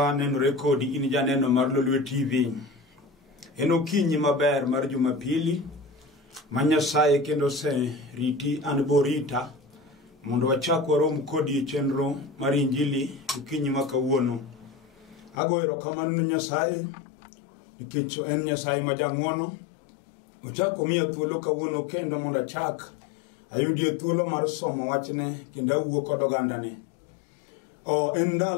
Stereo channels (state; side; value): drops out; right; at 15.4 s